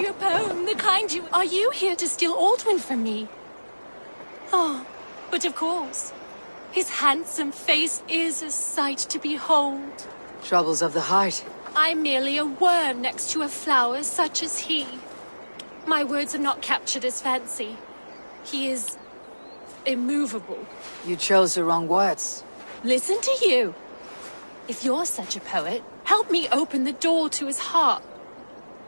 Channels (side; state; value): both; inverted; correlation -1.00